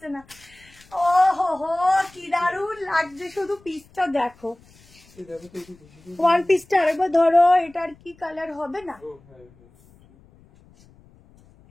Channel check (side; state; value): left; noise; rumble, 28 dB below the sound